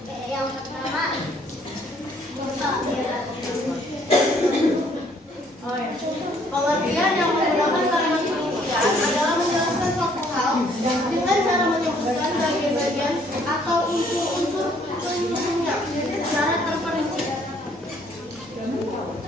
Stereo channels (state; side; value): normal; both; correlation 0.63